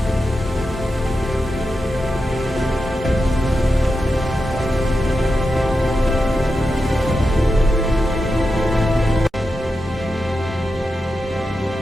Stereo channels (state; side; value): normal; both; correlation 0.89